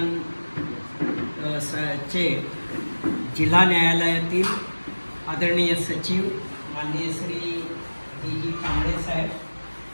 चे जिल्हा न्यायालयातील आदरणीय सचिव माननीय श्री जी कांबळे साहेब,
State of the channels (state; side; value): inverted; both; correlation -1.00